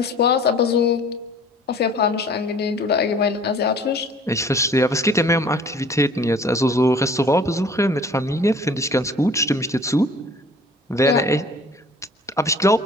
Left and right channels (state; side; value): normal; both; correlation 0.50